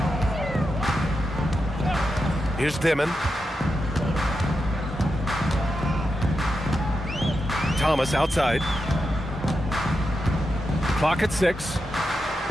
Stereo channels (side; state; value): both; normal; correlation 0.87